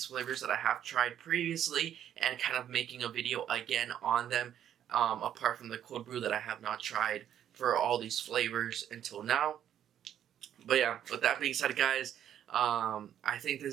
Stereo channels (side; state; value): left; quieter; 10.2 dB